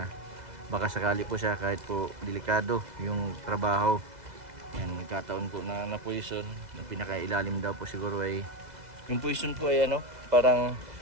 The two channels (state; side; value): late; left; 2.0 ms